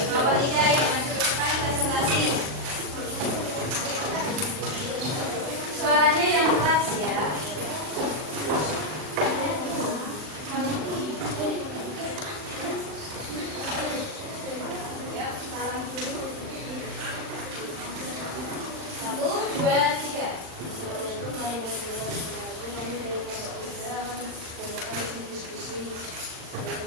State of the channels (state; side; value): late; left; 39 ms